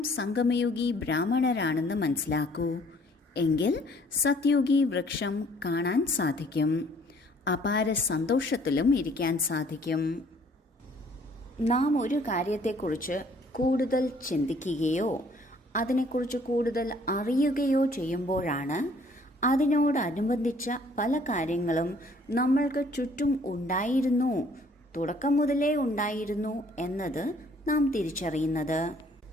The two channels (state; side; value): normal; both; correlation 0.59